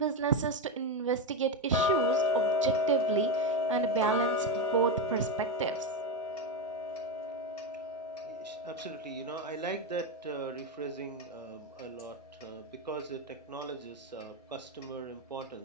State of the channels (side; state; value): both; normal; correlation 0.10